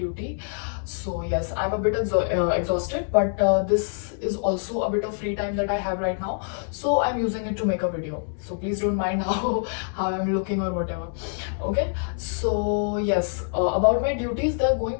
So yes, I'm a bit exhausted, but this is also a bit of free time that I have right now, so I'm using it to make a video. So please don't mind how I'm looking or whatever. Okay, so yes, about my duties, they're going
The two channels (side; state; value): right; silent; digital silence